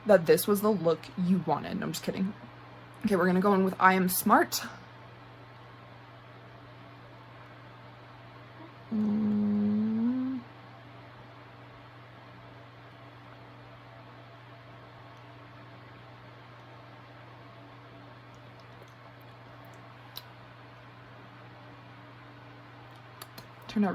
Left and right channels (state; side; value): identical; both; correlation 1.00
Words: that this was the look you wanted. No, I'm just kidding. Okay, we're gonna go in with I Am Smart. Turned out